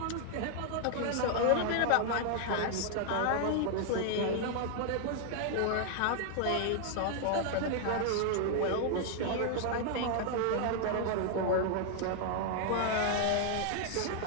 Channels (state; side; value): different; both; correlation 0.00